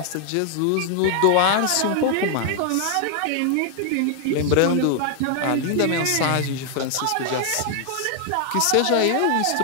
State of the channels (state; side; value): different; both; correlation 0.00